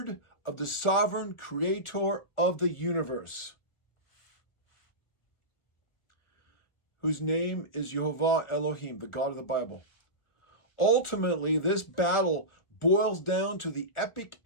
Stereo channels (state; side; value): late; right; 1.4 ms